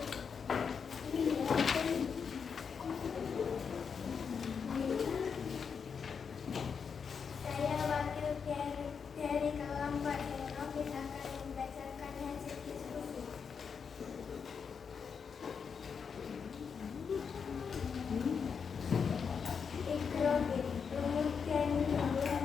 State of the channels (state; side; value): quieter; right; 6.2 dB